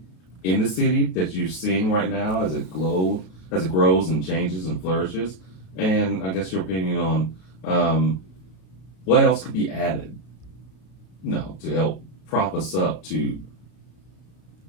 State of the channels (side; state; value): right; late; 33 ms